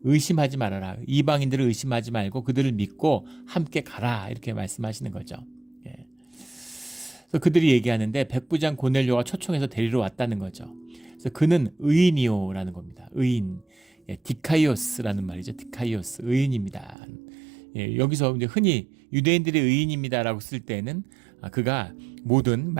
의심하지 말아라. 이방인들을 의심하지 말고 그들을 믿고 함께 가라. 이렇게 말씀하시는 거죠. 그래서 그들이 얘기하는데 백부장 고넬료가 초청해서 데리러 왔다는 거죠. 그래서 그는 의인이요라는 겁니다. 의인. 디카이오스라는 말이죠. 디카이오스. 의인입니다. 여기서 이제 흔히 유대인들의 의인입니다라고 쓸 때는 그가 모든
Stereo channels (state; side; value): drops out; left; at 16.9 s